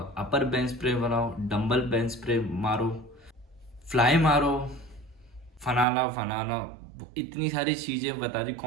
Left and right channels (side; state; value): left; drops out; at 5.9 s